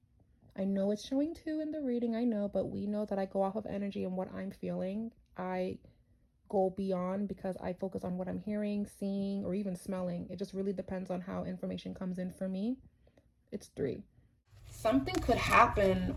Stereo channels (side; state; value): both; identical; correlation 1.00